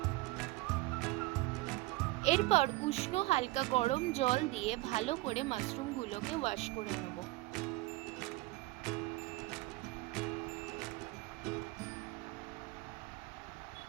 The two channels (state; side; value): quieter; left; 20.4 dB